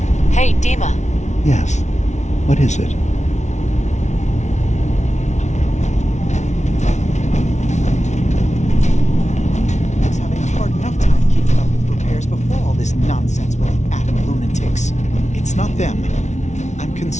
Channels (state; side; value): late; right; 0.33 ms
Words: Hey, Dima. Yes. What is it? I was having a hard enough time keeping up with repairs before all this nonsense with the atom lunatics. It's not them. I'm